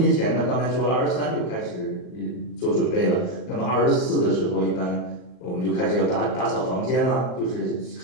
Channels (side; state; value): right; late; 39 ms